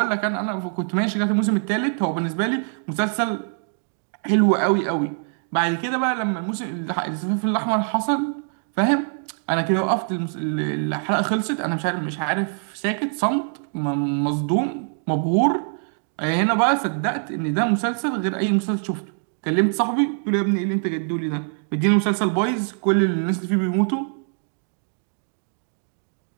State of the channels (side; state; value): left; silent; 58 dB below the other